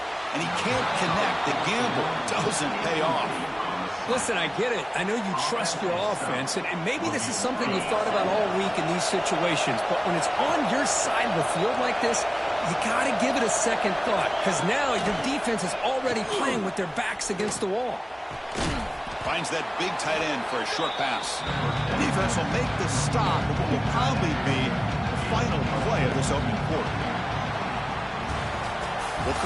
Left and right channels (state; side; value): identical; both; correlation 1.00